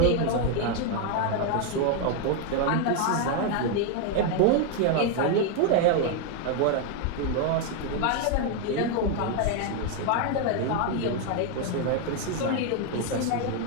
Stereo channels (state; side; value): different; both; correlation 0.01